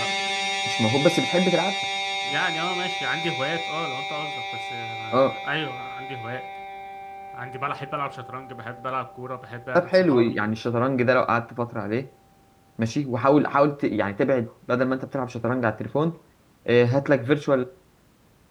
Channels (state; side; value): identical; both; correlation 1.00